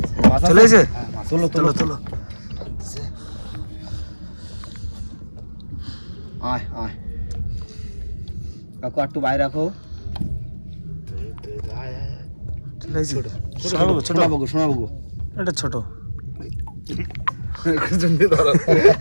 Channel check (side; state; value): both; inverted; correlation -1.00